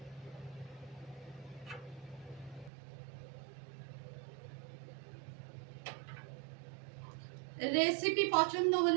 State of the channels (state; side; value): drops out; left; at 2.7 s